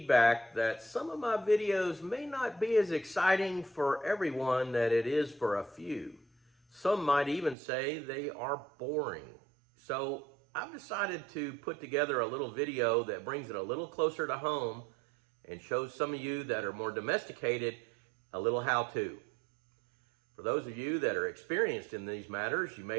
that some of my videos may not be as exciting for everyone that it is for a few. Some might even say they are boring. So I've decided to put together a little video that brings it a little closer to home and shows some of you that are more domesticated a little how-to. For those of you that are experienced in these matters, you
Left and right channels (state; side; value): drops out; left; at 7.6 s